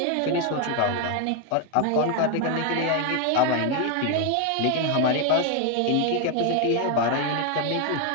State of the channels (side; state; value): both; different; correlation 0.01